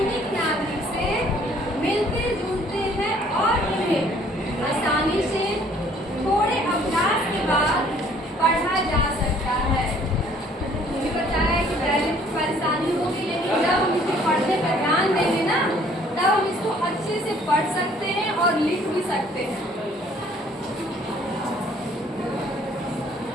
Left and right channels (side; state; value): both; normal; correlation 0.59